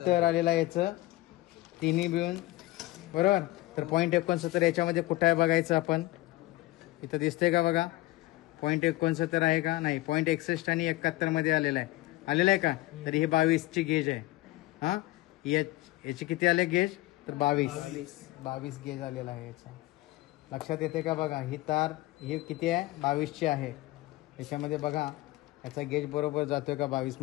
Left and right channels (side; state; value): right; quieter; 18.7 dB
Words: आलेला याचं तिन्ही मिळून. बरोबर. तर 0.69 याच्यामध्ये कुठं आहे बघायचं आपण. इथं दिसतंय का बघा 0.69 आहे का नाही. 0.61 आणि 71 मध्ये आलेला आहे का. तर ही 22ची गेज आहे. हा याची किती आले गेज तर 22 गेज आलेला आहे याचा. लक्षात येते का बघा. ही तार ही किती आहे 22ची आहे. याच्यामध्ये बघा याचा गेज बरोबर जातोय का 22